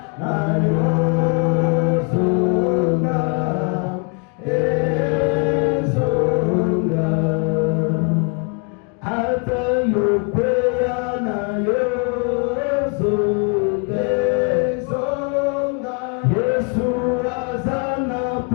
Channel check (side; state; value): right; quieter; 35.7 dB